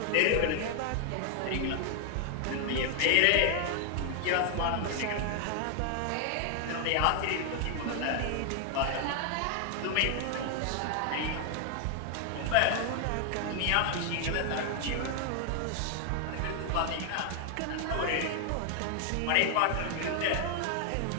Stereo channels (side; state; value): both; different; correlation 0.00